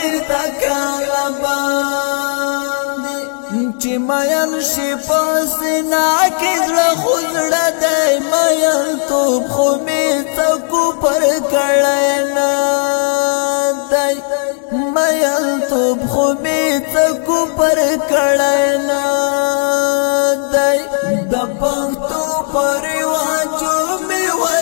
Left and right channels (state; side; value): silent; right; digital silence